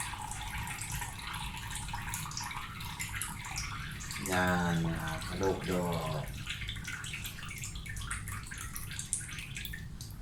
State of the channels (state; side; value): identical; both; correlation 1.00